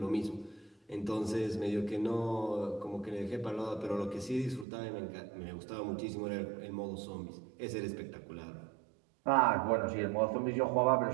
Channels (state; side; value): drops out; left; at 4.7 s